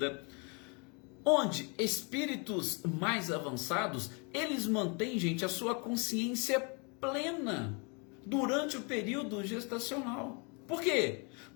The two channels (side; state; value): right; quieter; 33.4 dB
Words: onde espíritos mais avançados, eles mantêm, gente, a sua consciência plena durante o período gestacional. Por quê?